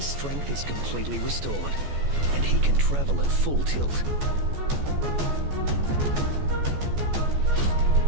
strength is completely restored, and he can travel at full tilt.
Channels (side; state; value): left; late; 14 ms